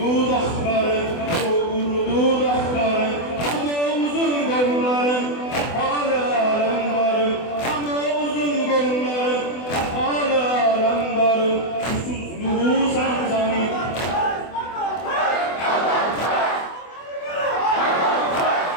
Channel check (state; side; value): late; right; 24 ms